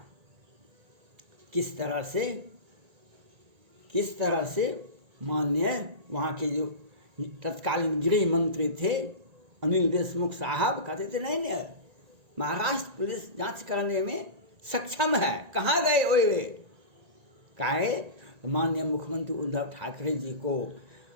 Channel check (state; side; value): late; left; 1.9 ms